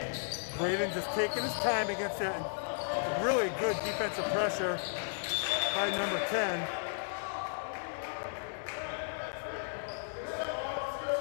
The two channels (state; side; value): silent; right; digital silence